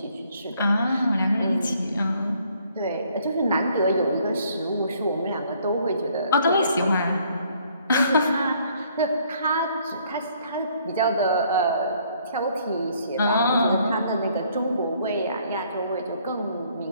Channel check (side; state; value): both; inverted; correlation -0.64